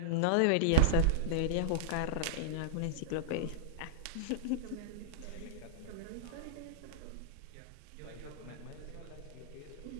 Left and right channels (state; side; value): different; both; correlation -0.02